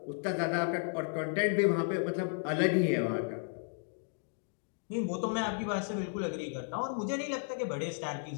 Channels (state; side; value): silent; right; 55 dB below the other